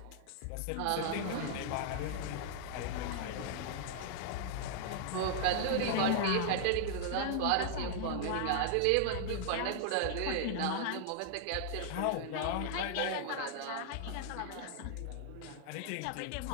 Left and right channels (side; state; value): both; different; correlation -0.01